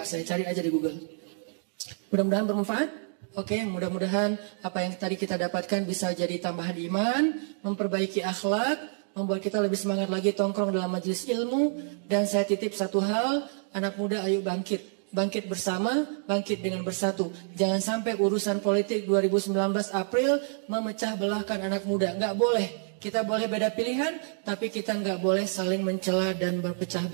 saya cari aja di Google. Mudah-mudahan bermanfaat. Oke, mudah-mudahan apa yang tadi kita dapatkan bisa jadi tambahan iman, memperbaiki akhlak, membuat kita lebih semangat lagi tongkrong dalam majelis ilmu. Dan saya titip satu hal, anak muda ayo bangkit. Bangkit bersama, bangkit dengan bersatu. Jangan sampai urusan politik 2019 April memecah belahkan anak muda. Nggak boleh. Kita boleh beda pilihan, tapi kita nggak boleh saling mencela dan berpecah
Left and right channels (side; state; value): left; silent; digital silence